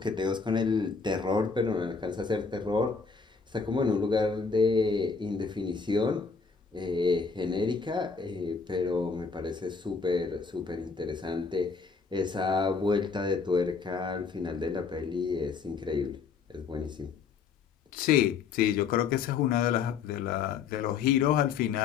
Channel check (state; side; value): quieter; right; 5.3 dB